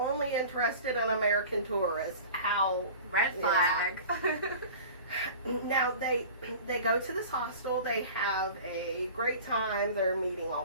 interested in American tourists. How red flag. Yeah. Now they go to this hostel. They have a great time. They're meeting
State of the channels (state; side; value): inverted; both; correlation -0.40